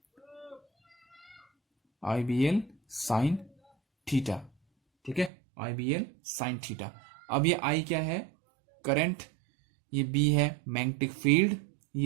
IBL साइन थीटा, ठीक है, IBL साइन थीटा। अब ये I क्या है, करंट, ये B है मैग्नेटिक फील्ड,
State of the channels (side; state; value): left; drops out; at 5.3 s